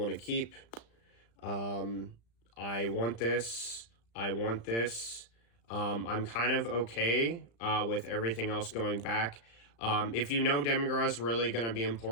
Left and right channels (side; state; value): right; late; 35 ms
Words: to keep. I want this. I want this. I'm kind of okay with everything else going back. If you know Demigra is really going to be